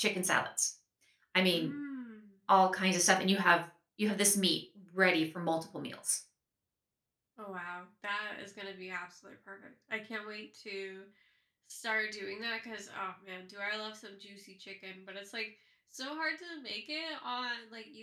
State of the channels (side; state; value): both; identical; correlation 1.00